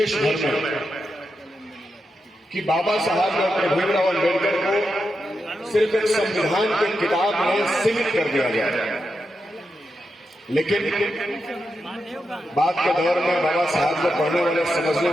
भर में कि बाबा साहब डॉक्टर भीमराव अम्बेडकर को सिर्फ एक संविधान की किताब में सीमित कर दिया गया। लेकिन बाद के दौर में बाबा साहब को पढ़ने वाले समझने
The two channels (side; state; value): both; normal; correlation 0.87